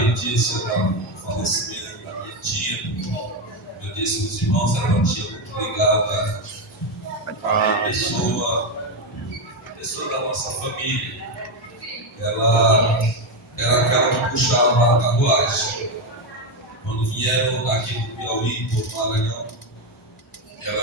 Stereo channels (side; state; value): both; normal; correlation 0.09